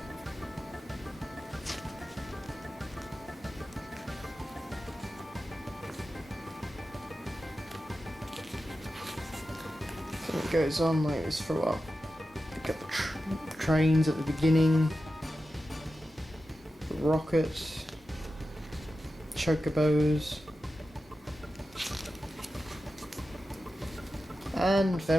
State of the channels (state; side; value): normal; both; correlation 0.92